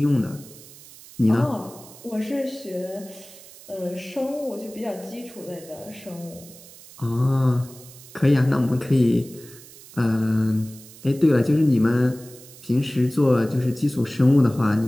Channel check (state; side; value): noise; right; hiss, 20 dB below the sound